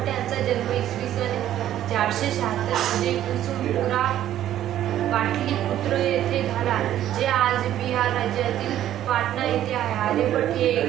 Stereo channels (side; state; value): left; quieter; 12.0 dB